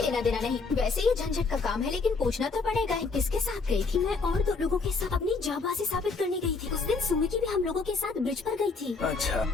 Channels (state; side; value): quieter; right; 4.3 dB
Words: लेना देना नहीं। वैसे ये झंझट का काम है, लेकिन पूछना तो पड़ेगा ही। किसके साथ गई थी? मैं और 2 लोगों के साथ अपनी जाबाजी साबित करने गई थी। उस दिन सुमिकी भी हम लोगों के साथ ब्रिज पर गई थी। अच्छा,